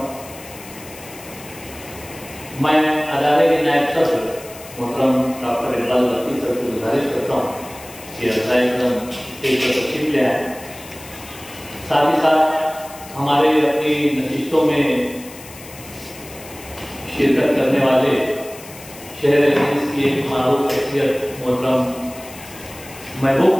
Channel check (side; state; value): left; noise; hiss, 17 dB below the sound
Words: मैं अदारे के नायब सदर मुहतरम डॉक्टर इकबाल बल्की सर से गुजारिश करता हूँ कि स्टेज पर तशरीफ ले आए। साथ ही साथ हमारे अपनी नशिस्तों में शिरकत करने वाले शहर अजीज की एक मारूफ शख्सियत मोहतरम महबूब